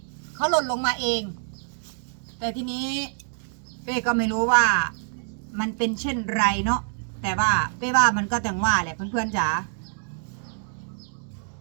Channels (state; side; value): silent; left; digital silence